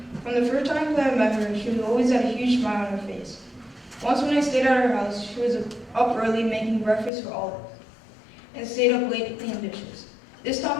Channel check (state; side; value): drops out; right; at 7.1 s